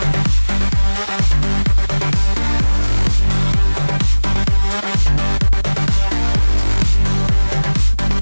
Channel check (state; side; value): inverted; both; correlation -1.00